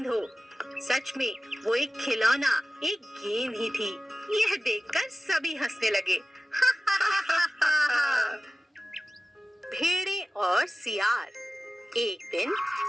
हो। सच में वो एक खिलौना, एक गेम ही थी। यह देखकर सभी हंसने लगे। भेड़े और सियार। एक दिन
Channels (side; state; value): both; normal; correlation 0.97